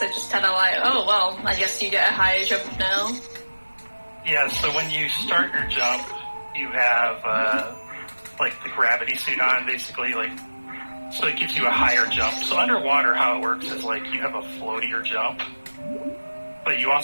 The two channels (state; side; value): inverted; both; correlation -1.00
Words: are just kind of like, oh, well, I guess you get a higher jump now. Yeah, so when you start your jump, you have, like, the gravity suit on, basically, like, so it gives you a higher jump. So underwater, how it works is, like, you have a floatier jump, but you